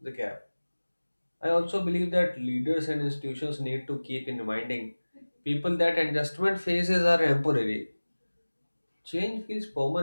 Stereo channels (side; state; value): both; inverted; correlation -1.00